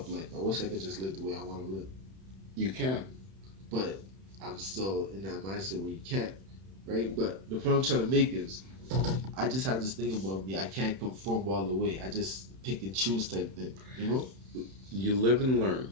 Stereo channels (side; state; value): left; late; 31 ms